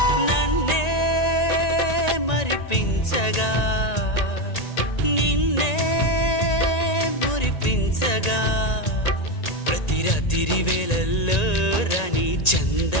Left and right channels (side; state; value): right; late; 1.9 ms